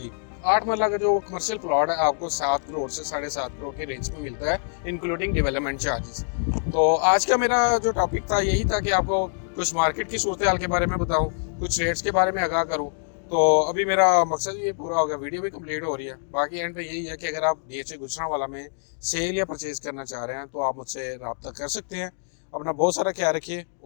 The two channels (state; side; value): silent; right; digital silence